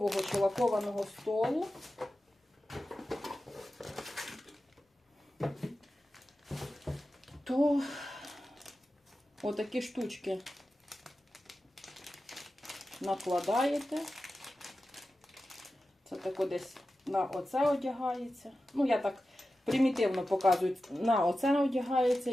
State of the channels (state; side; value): normal; both; correlation 0.93